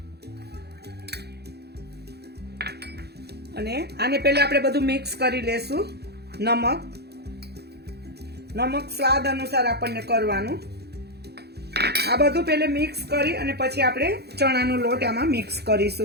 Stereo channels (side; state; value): left; late; 0.48 ms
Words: અને આને પહેલા આપણે બધું મિક્સ કરી લેશું. નમક સ્વાદ અનુસાર આપણને કરવાનું. આ બધું પહેલે મિક્સ કરી અને પછી આપણે ચણાનો લોટ આમાં મિક્સ